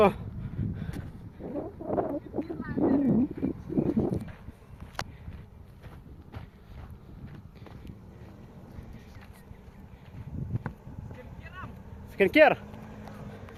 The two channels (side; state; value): both; identical; correlation 1.00